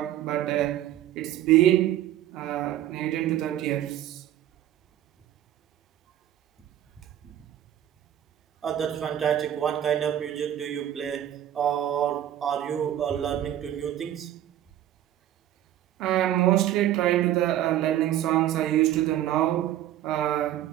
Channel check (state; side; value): quieter; left; 12.1 dB